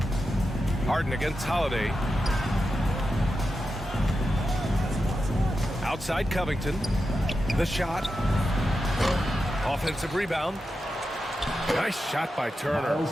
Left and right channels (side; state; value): both; normal; correlation 0.89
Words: Harden against Holiday. Outside Covington. The shot. Offensive rebound. Nice shot by Turner.